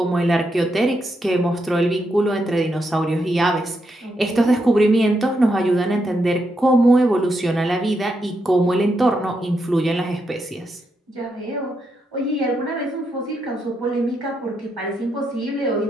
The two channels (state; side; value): normal; both; correlation 0.82